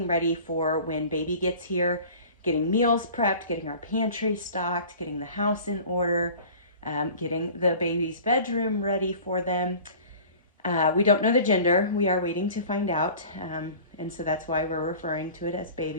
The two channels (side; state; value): both; inverted; correlation -0.43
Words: ready for when baby gets here, getting meals prepped, getting our pantry stocked, getting the house in order, getting the baby's bedroom ready for them. We don't know the gender. We are waiting to find out. And so that's why we're referring to it as